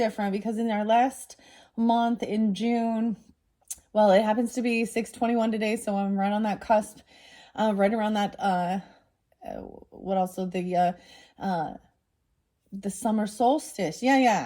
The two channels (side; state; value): both; identical; correlation 1.00